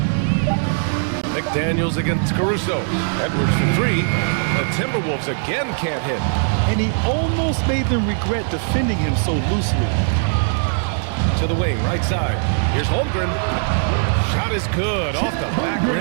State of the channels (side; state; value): left; silent; 64 dB below the other